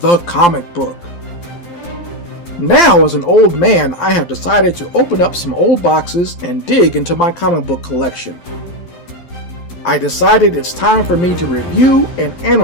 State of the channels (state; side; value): late; right; 12 ms